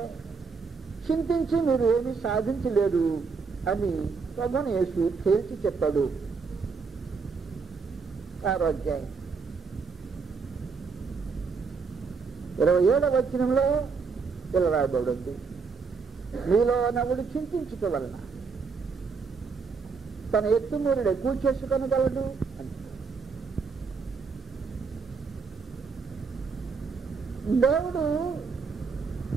చింతించి మీరు ఏమీ సాధించలేరు అని ప్రభువుని యేసు తేల్చి చెప్పాడు. 6వ అధ్యాయం 27వ వచనంలో ఇలా రాయబడింది, మీలో నవ్వుడు చింతించటం వలన తన ఎత్తుమూరుడు ఎక్కువ చేసుకొనగలడు అని. దేవుడు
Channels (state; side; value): quieter; left; 4.9 dB